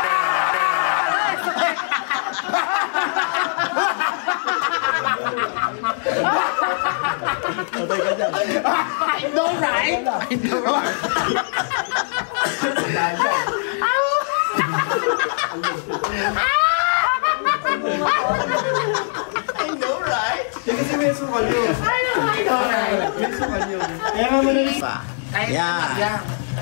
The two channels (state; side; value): silent; right; digital silence